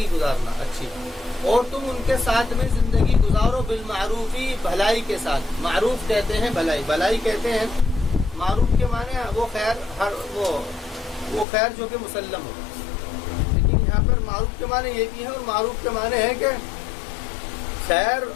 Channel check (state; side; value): drops out; right; at 11.5 s